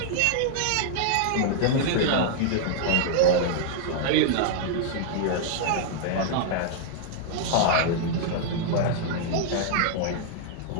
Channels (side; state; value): both; different; correlation -0.01